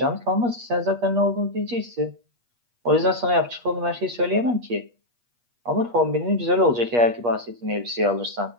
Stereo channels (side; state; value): left; late; 8.4 ms